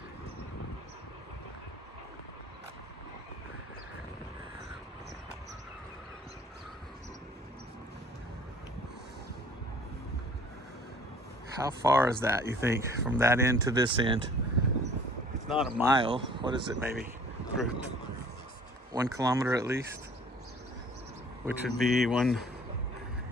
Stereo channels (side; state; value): both; normal; correlation 0.52